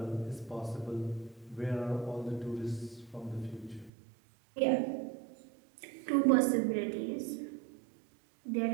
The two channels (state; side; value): drops out; left; at 3.9 s